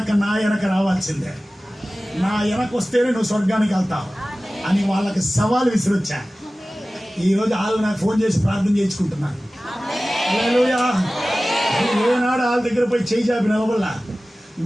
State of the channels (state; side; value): normal; both; correlation 0.97